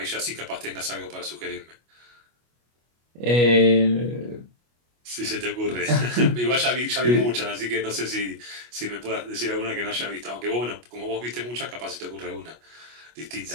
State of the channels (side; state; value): left; late; 25 ms